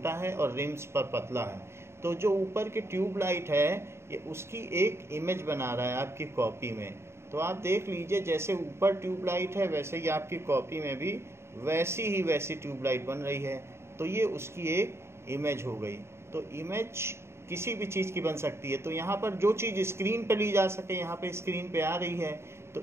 है और रिम्स पर पतला है। तो जो ऊपर की ट्यूब लाइट है ये उसकी एक इमेज बना रहा है आपकी कॉपी में। तो आप देख लीजिए जैसे ऊपर ट्यूब लाइट है वैसे ही आपकी कॉपी में भी वैसी ट्यूब लाइट बन रही है, तो ये उसकी एक इमेज हो गई। तो इमेज किसी भी चीज़ की बन सकती है। तो यहाँ पर जो चीज़ स्क्रीन पे ली जा सके यहाँ पे स्क्रीन पे आ रही है, तो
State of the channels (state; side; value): late; left; 0.13 ms